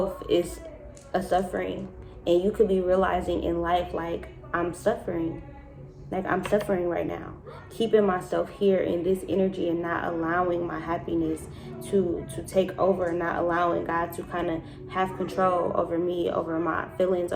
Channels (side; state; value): both; identical; correlation 1.00